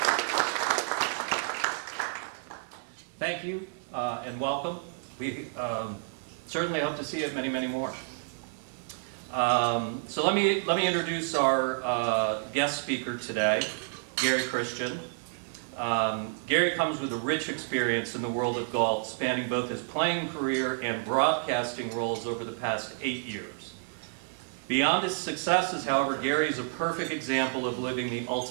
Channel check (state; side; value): silent; left; digital silence